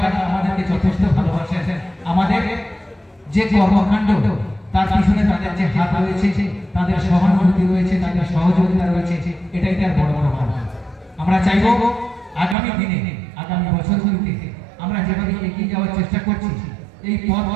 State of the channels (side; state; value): left; drops out; at 12.6 s